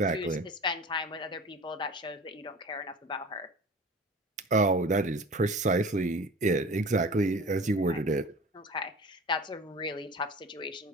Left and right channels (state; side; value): normal; both; correlation 0.39